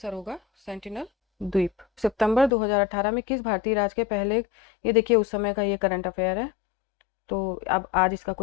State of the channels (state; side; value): drops out; right; at 2.5 s